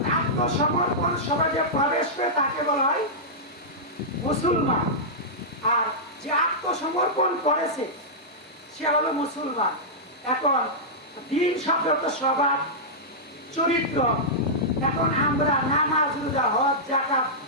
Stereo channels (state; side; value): normal; both; correlation -0.12